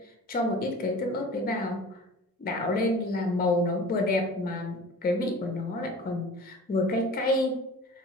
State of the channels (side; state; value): both; normal; correlation 0.41